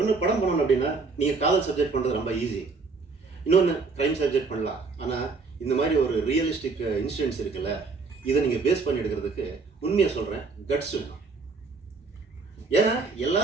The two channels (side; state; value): left; quieter; 4.2 dB